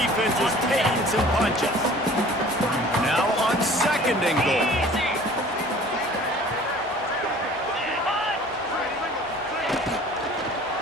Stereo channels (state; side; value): normal; both; correlation 0.48